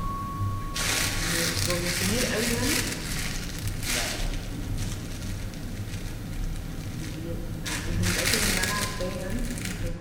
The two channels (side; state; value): both; identical; correlation 1.00